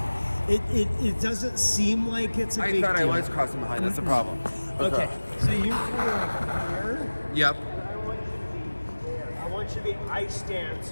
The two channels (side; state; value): both; inverted; correlation -1.00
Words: It doesn't seem like it's a big deal. I was crossing behind. That's the problem. Okay. So you're kind of like here. Yep. And I want you to be there. I want you to be ice